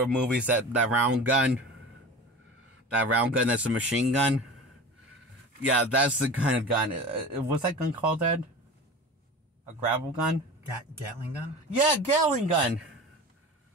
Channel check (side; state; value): both; normal; correlation 0.34